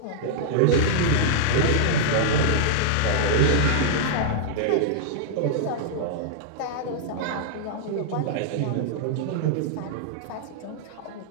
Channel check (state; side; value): different; both; correlation -0.01